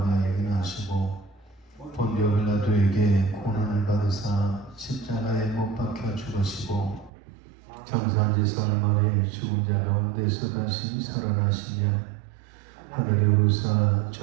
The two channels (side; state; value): left; drops out; at 7.1 s